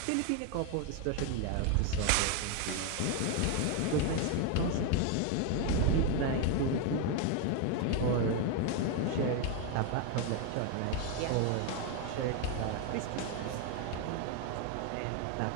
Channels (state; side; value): different; both; correlation 0.01